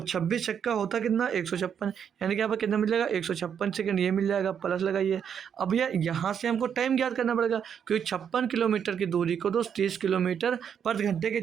26 छक्का होता कितना 156, यानी कि यहाँ पर कितना मिल जाएगा 156 सेकंड, ये मिल जाएगा, प्लस लगाइए। अब भैया यहाँ से हमको टाइम ज्ञात करना पड़ेगा, क्योंकि 56 किलोमीटर की दूरी को दोस्त 30 किलोमीटर पर घंटे के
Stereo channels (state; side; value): quieter; left; 8.0 dB